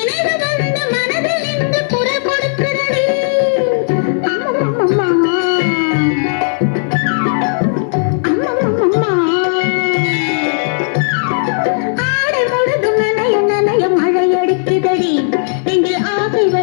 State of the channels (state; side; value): silent; right; digital silence